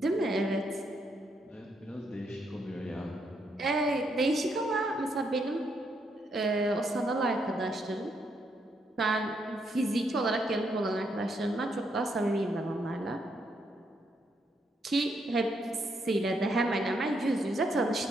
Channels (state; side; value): normal; both; correlation 0.77